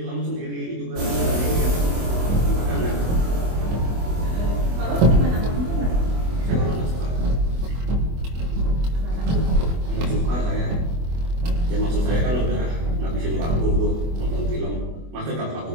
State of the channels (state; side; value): late; left; 24 ms